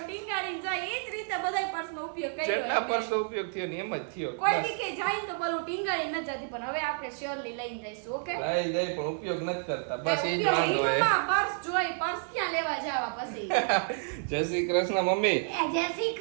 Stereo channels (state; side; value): silent; left; 57 dB below the other